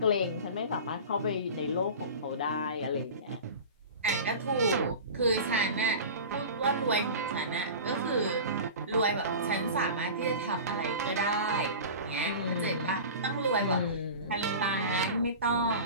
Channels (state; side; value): inverted; both; correlation -0.34